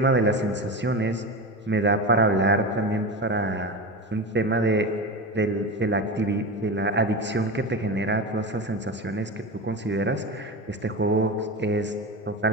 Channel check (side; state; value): both; normal; correlation 0.23